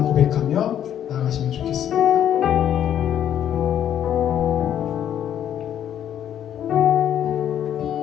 고백하며 나아가시면 좋겠습니다.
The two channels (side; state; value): right; quieter; 10.1 dB